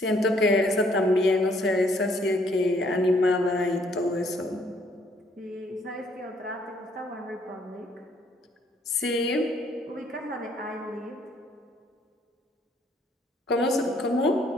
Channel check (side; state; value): both; normal; correlation 0.65